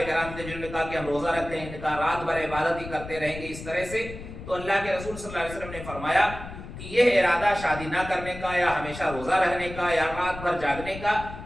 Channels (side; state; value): left; noise; rumble, 12 dB below the sound